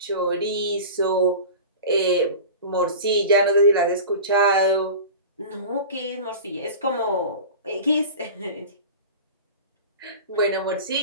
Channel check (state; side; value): inverted; both; correlation -0.34